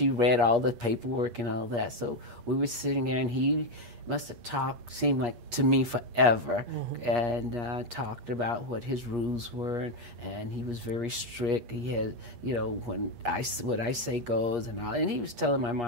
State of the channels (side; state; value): left; late; 8.4 ms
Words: read all the paperwork and all that. So we were sitting there, and he must have talked, seemed like to me forever, and talked about what his rules were. And he was very strict. He had, what I say goes and all. And he was telling my